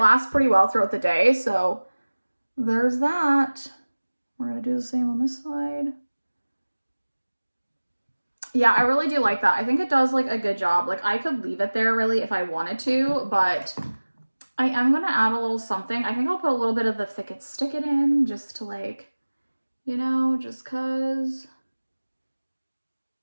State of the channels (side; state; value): both; inverted; correlation -1.00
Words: lasts pretty well throughout the day. So there's that. We're gonna do the same on this side. Yeah, I really do like that. I think it does like a good job. Like, I could leave it there really if I wanted to, but I am gonna add a little something. I think I'll put a little bit of the Thick It Stick It in just to like, you know, just cause.